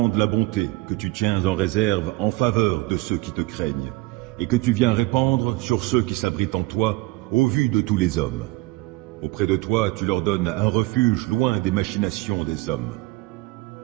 la bonté que tu tiens en réserve en faveur de ceux qui te craignent, et que tu viens répandre sur ceux qui s'abritent en toi, au vu de tous les hommes. Auprès de toi, tu leur donnes un refuge loin des machinations des hommes.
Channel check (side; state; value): left; quieter; 21.3 dB